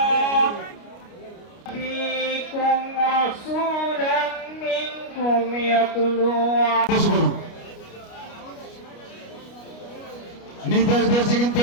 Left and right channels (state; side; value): late; right; 29 ms